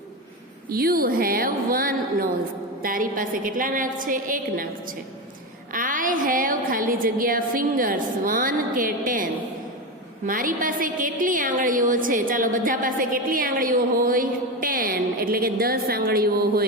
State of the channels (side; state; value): both; normal; correlation 0.17